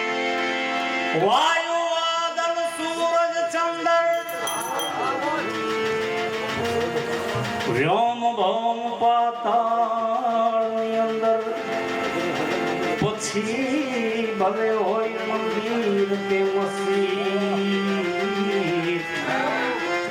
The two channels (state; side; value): identical; both; correlation 1.00